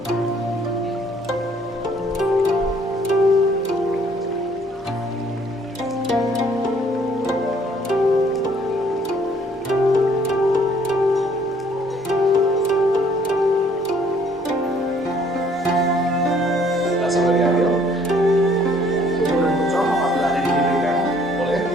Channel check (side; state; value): both; normal; correlation 0.61